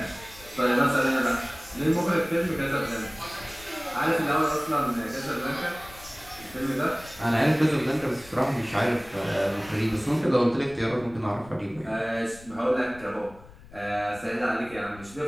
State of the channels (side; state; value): left; noise; rumble, 21 dB below the sound